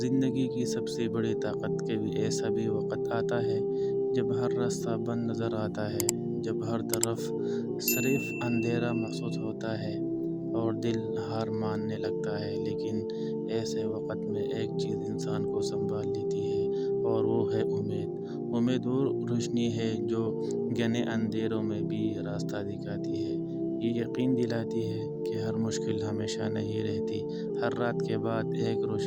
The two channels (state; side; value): identical; both; correlation 1.00